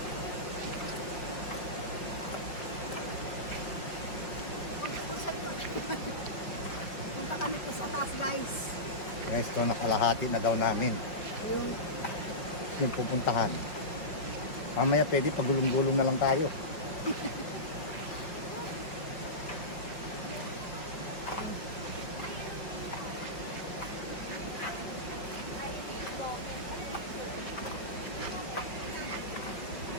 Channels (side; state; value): right; late; 4.9 ms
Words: Punta kami po sa taas guys. Guys, ito nakalahati na daw namin. Yung pupuntahan. Mamaya pwede pagulong-gulong na lang tayo.